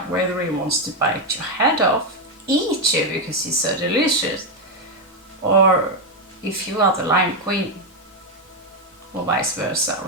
whether he wants to bite your head off, eat you because he's so delicious, or if you are the lion queen, or vice versa,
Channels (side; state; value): both; normal; correlation 0.05